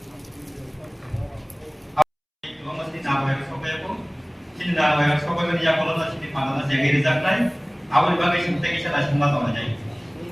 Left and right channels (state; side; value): identical; both; correlation 1.00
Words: sini dah bayar sekolah kerja kalau tak sini panas jaga rezak lain awal bagai sini kita lah semua tahu aja.